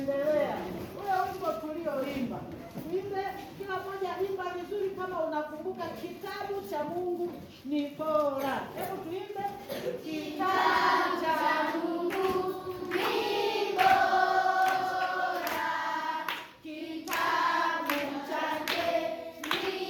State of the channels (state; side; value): identical; both; correlation 1.00